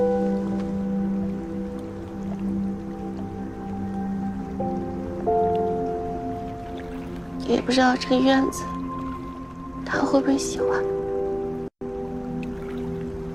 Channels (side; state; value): both; identical; correlation 1.00